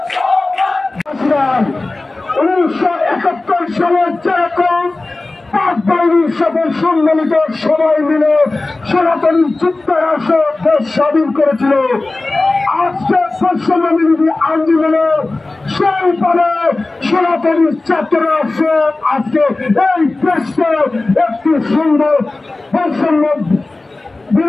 1971 সালে যেরকম পাক বাহিনীর সকল সম্মিলিত সবাই মিলে সনাতনী যুক্তরাষ্ট্র দেশ স্বাধীন করেছিল, আজকে বৈষম্যবিরোধী আন্দোলনে সেই পরে সনাতনী ছাত্র রাষ্ট্র আজকে এই দেশকে একটি সুন্দর বৈষম্য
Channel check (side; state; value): right; quieter; 3.1 dB